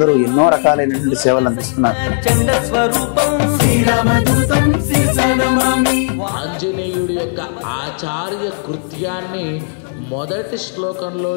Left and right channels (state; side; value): silent; right; digital silence